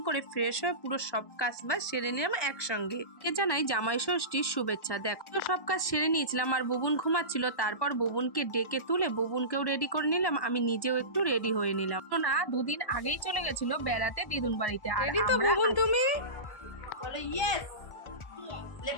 করে ফ্রেশ হয়ে পুরো সব কাজ বাজ সেরে নিলাম একসঙ্গে। কে জানাই জামাই ষষ্ঠীর শুভেচ্ছা। দেখো তো সব কাজ সেরে নিয়েছিলাম আর বুবুন ঘুমাচ্ছিল, তারপর বুবুনকে ডেকে তুলে বুবুনকেও রেডি করে নিলাম, আমি নিজেও একটু রেডি হয়ে নিলাম। তো না, দুদিন আগেই চলে গেছিল বেড়াতে দিদুন বাড়িতে। রেডি তো বুবুন তুমি? বলো ইয়েস,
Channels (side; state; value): right; late; 1.1 ms